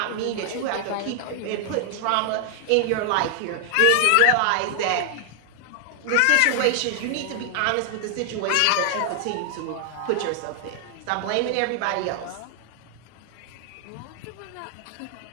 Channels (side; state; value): both; different; correlation 0.00